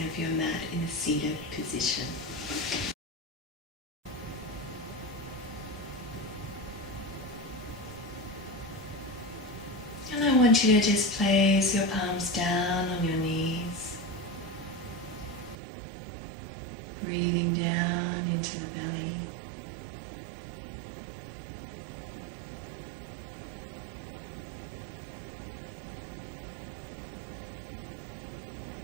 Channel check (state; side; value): drops out; left; at 15.6 s